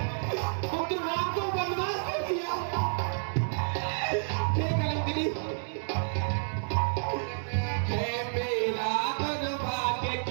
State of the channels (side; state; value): left; silent; digital silence